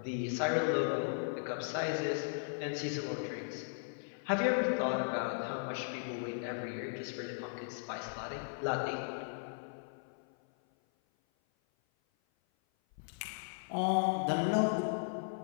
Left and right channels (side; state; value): right; silent; 53 dB below the other